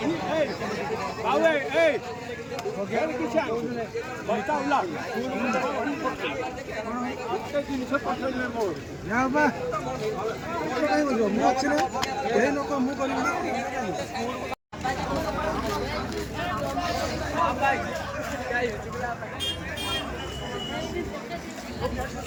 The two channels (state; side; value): identical; both; correlation 1.00